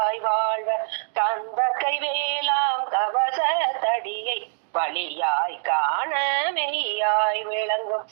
வாழ்வர் கந்தக்கை வேளாம் கவச தடியை வழியாய் காண மெய்யாய் விளங்கும்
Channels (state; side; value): silent; left; digital silence